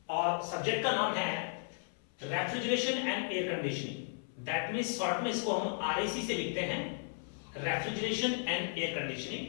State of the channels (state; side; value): silent; right; 54 dB below the other